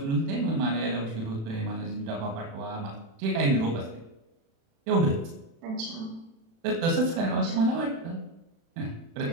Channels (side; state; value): left; late; 36 ms